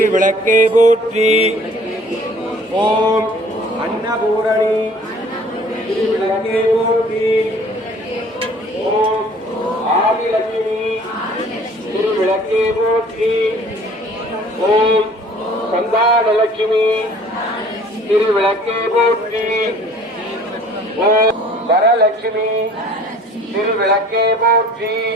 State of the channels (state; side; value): normal; both; correlation 0.51